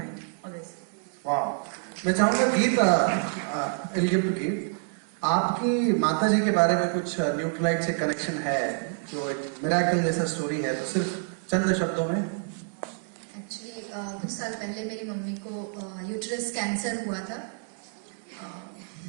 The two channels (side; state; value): left; silent; 55 dB below the other